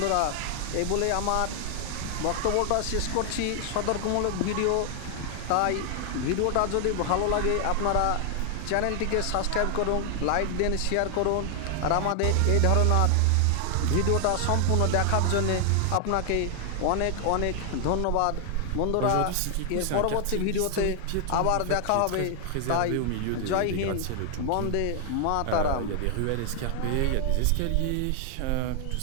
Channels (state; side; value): different; both; correlation 0.00